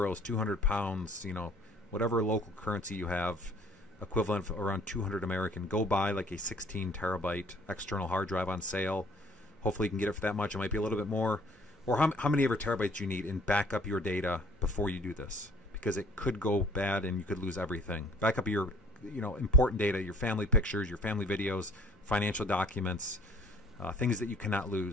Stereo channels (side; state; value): both; normal; correlation 0.57